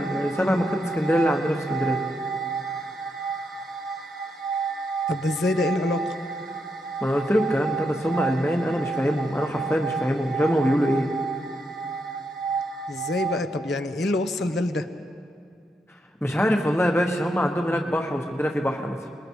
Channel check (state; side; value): normal; both; correlation 0.82